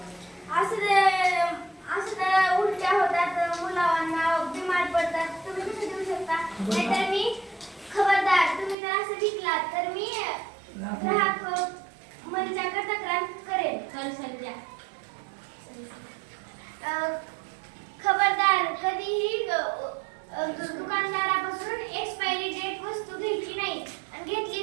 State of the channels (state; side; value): drops out; left; at 8.8 s